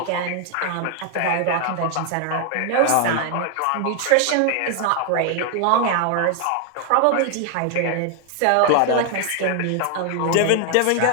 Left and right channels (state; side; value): different; both; correlation 0.00